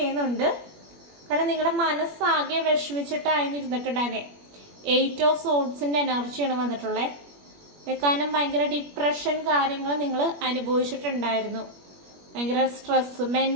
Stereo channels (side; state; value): left; late; 21 ms